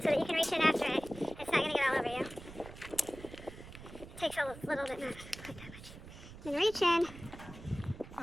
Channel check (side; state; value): right; noise; rumble, 15 dB below the sound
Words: so that you can reach in after it. It's not going to get all over you. It takes a little bit, not quite that much. Then reach in.